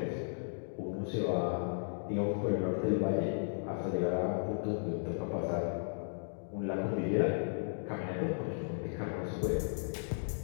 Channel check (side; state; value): right; silent; digital silence